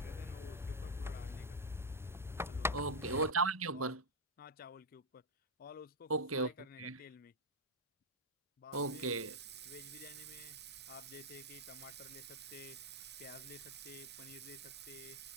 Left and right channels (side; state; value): both; normal; correlation 0.01